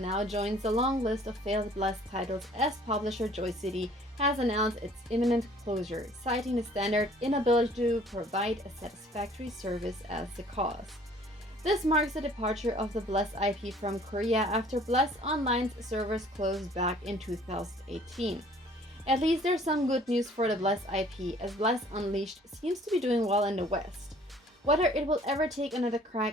joins the long list of failed Bless titles as publisher Joy City has announced its imminent closure, citing the standard inability to provide a satisfactory service as the cause. This marks the departure of the Bless IP from Korea after Bless Online's servers closed back in 2018. At least there's some good news for the Bless IP, as Bless Unleashed seems to be doing well in the West. Whether it will ever take another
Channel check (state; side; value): normal; both; correlation 0.55